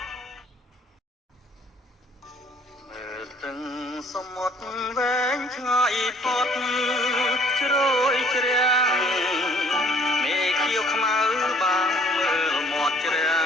មើលទឹកសមុទ្រវែងឆ្ងាយផុតជ្រោយជ្រាំងមេខៀវខ្មៅបាំងមើលមាត់ជ្រា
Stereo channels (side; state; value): both; normal; correlation 0.58